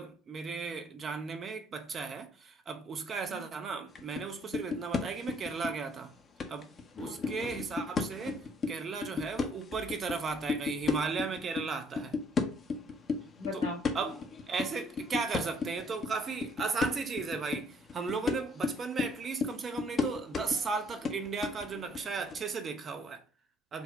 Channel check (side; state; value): both; normal; correlation 0.64